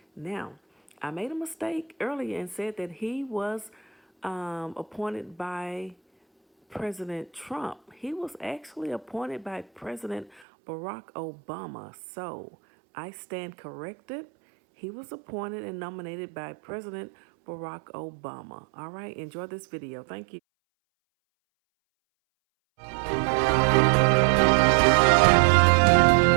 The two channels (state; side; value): drops out; left; at 10.4 s